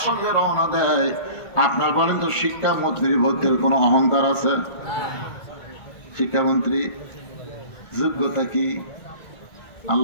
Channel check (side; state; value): right; late; 1.5 ms